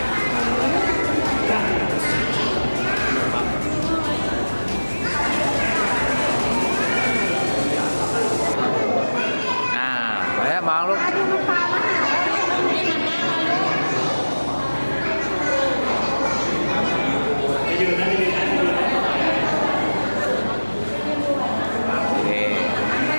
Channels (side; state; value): both; inverted; correlation -1.00